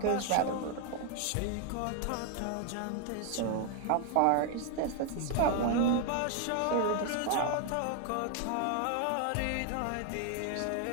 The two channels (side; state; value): both; different; correlation 0.00